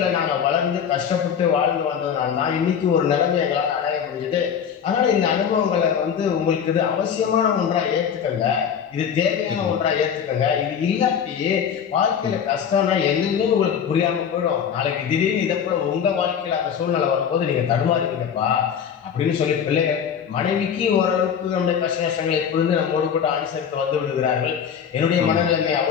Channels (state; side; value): quieter; right; 7.8 dB